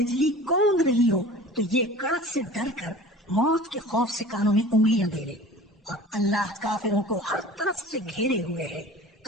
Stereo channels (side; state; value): both; normal; correlation 0.41